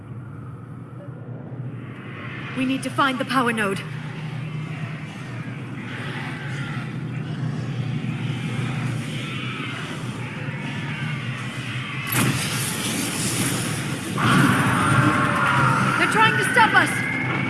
We need to find the power node. They're trying to stop us!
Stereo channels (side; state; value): both; identical; correlation 1.00